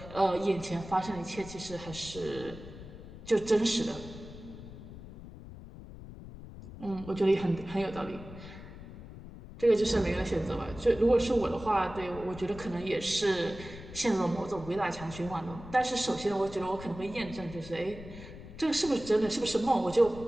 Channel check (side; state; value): left; noise; rumble, 14 dB below the sound